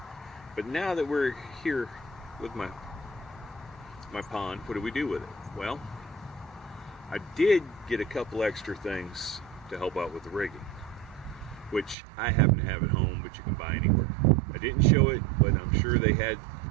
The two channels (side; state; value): left; drops out; at 12.0 s